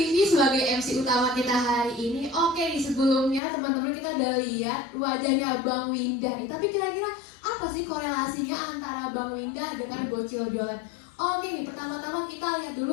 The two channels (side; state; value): right; drops out; at 3.4 s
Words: sebagai MC utama kita hari ini. Oke nih, sebelumnya teman-teman kita udah lihat wajahnya Bang Winda nih. Tapi kira-kira apa sih korelasinya antara Bang Winda dengan Bocil Jualan? Oke nih, pertama-tama kita lihat